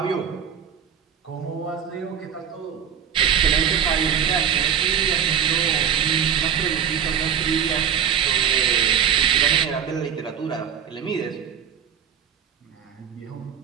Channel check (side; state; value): left; quieter; 8.4 dB